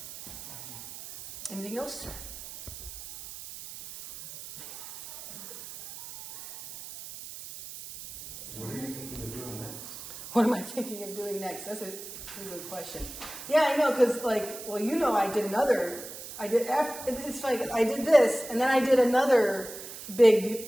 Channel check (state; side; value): noise; right; hiss, 12 dB below the sound